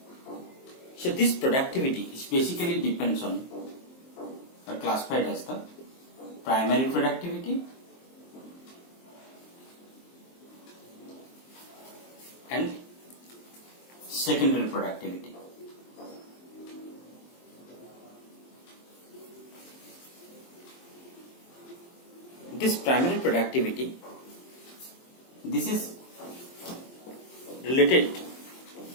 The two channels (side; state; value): right; late; 23 ms